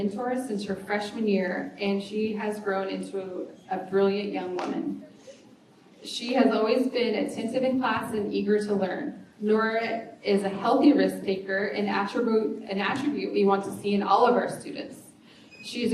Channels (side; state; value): both; identical; correlation 1.00